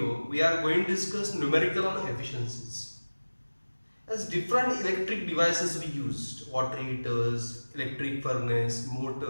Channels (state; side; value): inverted; both; correlation -1.00